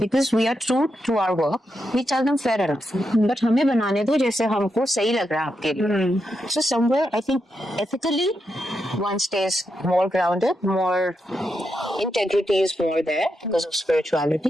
we are true to our work, we tell them fair enough. But हमें बनाने दो जैसे हमको सही लग रहा है आपके लिए. So somewhere I think ethically one stays more grounded, more integrity is more there because of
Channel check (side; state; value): both; normal; correlation 0.85